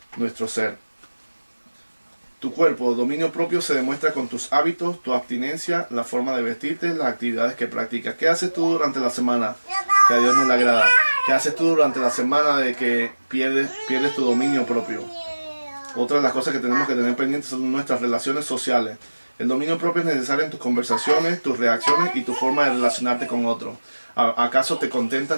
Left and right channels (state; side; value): inverted; both; correlation -1.00